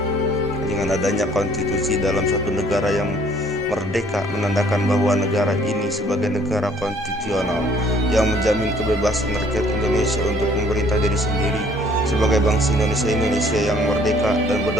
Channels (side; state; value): both; normal; correlation 0.59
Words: Dengan adanya konstitusi dalam suatu negara yang merdeka menandakan bahwa negara ini sebagai negara konstitusional yang menjamin kebebasan rakyat Indonesia untuk memerintah diri sendiri sebagai bangsa Indonesia yang merdeka dan